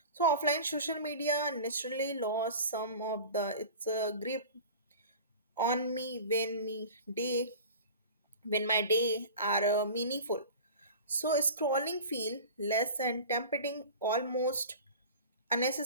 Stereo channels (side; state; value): both; inverted; correlation -0.37